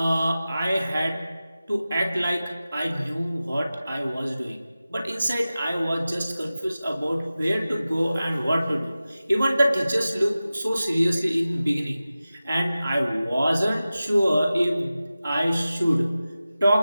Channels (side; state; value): both; inverted; correlation -0.95